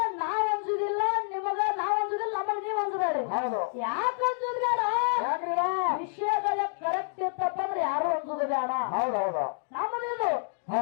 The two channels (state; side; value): silent; right; digital silence